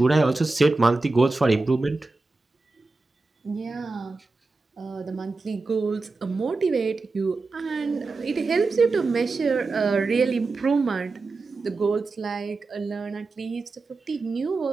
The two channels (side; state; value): left; quieter; 3.6 dB